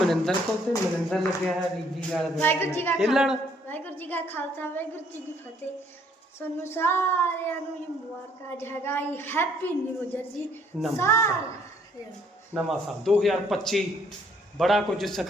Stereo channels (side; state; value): both; normal; correlation 0.64